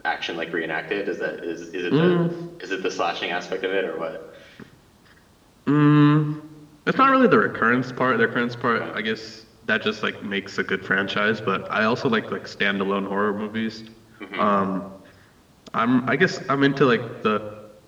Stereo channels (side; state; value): both; identical; correlation 1.00